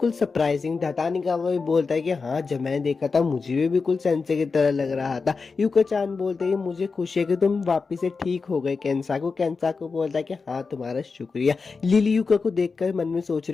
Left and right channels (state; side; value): quieter; right; 4.6 dB